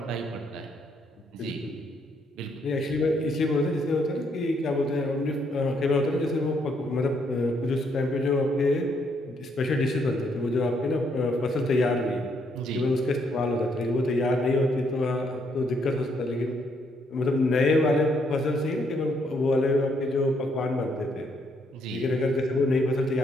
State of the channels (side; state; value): both; normal; correlation 0.73